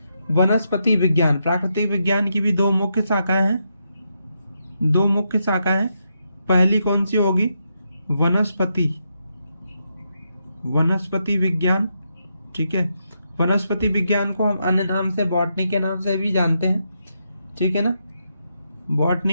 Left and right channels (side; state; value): both; inverted; correlation -0.82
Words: वनस्पति विज्ञान। प्राकृतिक विज्ञान की भी दो मुख्य शाखाएं हैं। पहली कौन सी होगी? वनस्पति विज्ञान, ठीक है। वनस्पति विज्ञान को हम अन्य नाम से बॉटनी के नाम से भी जानते हैं, ठीक है ना।